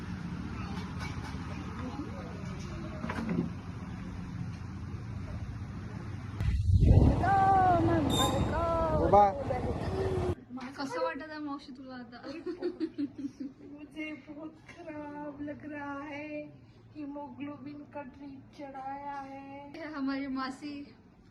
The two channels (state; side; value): identical; both; correlation 1.00